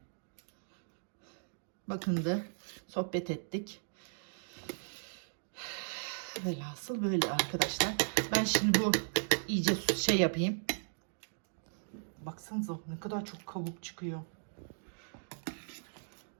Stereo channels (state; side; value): silent; left; digital silence